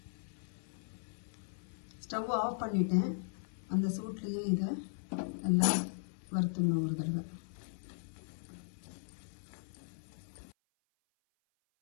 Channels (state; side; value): silent; right; 52 dB below the other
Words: ஸ்டவ் ஆஃப் பண்ணிட்டேன். அந்த சூட்லேயே இதை எல்லாம் வறுத்துடணும் ஒரு தடவை.